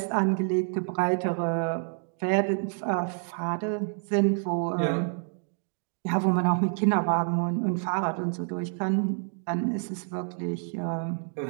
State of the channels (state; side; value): silent; left; 59 dB below the other